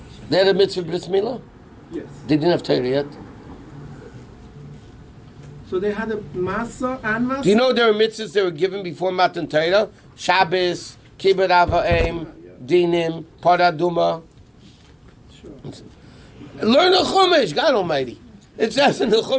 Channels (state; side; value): identical; both; correlation 1.00